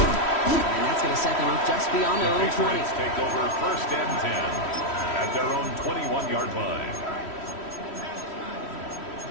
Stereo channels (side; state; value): right; late; 3.1 ms